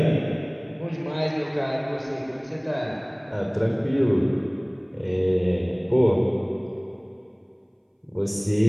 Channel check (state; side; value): identical; both; correlation 1.00